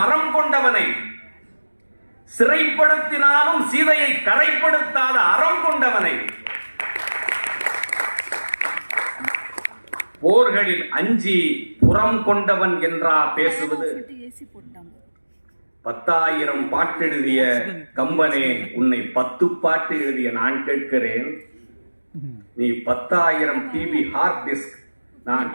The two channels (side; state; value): both; inverted; correlation -1.00